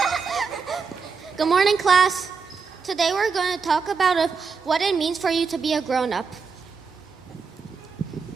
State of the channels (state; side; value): quieter; left; 5.3 dB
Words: Good morning, class. Today we're going to talk about what it means for you to be a grown-up.